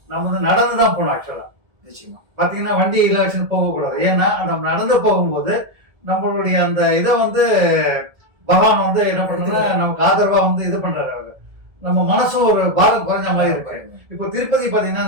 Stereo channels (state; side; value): late; left; 1.7 ms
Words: நம்ம நடந்துதான் போனோம். ஆக்சுவலா நிச்சயமா பாத்தீங்கன்னா வண்டியில வச்சு போகக்கூடாது. ஏன்னா நம்ம நடந்து போகும்போது நம்மளுடைய அந்த இதை பகவான் என்ன பண்றதுன்னா நமக்கு ஆதரவா இது பண்றாரு. அவரு நம்ம மனசும் ஒரு பாரம் குறைஞ்ச மாதிரி இருக்கு. இப்போ திருப்பதி பாத்தீங்கன்னா